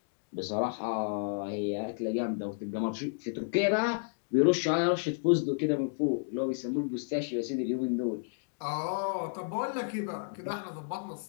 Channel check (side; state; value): right; silent; digital silence